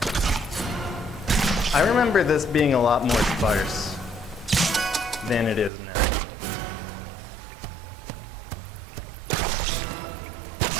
I remember this being a lot more sparse than it is now.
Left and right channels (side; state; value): left; drops out; at 5.7 s